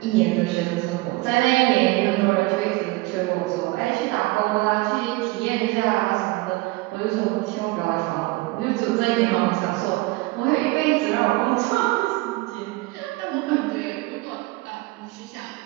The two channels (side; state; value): left; quieter; 22.1 dB